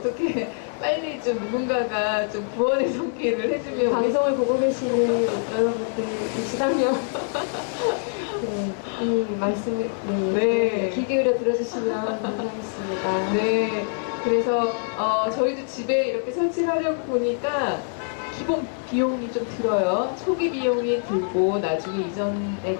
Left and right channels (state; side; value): silent; right; 61 dB below the other